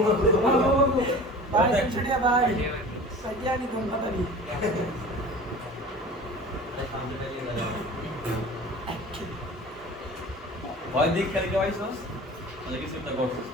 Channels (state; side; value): normal; both; correlation 0.40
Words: ভয় দিক খেলে কে পাইছস তাহলে কিছু একটা করছিস